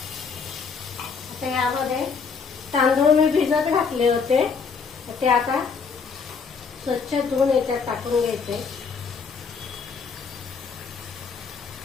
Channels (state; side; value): quieter; right; 5.5 dB